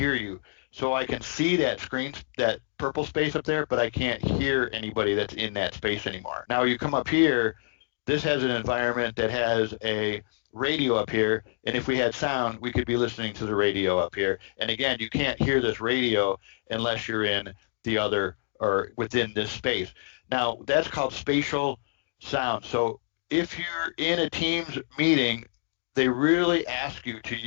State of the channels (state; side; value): silent; right; digital silence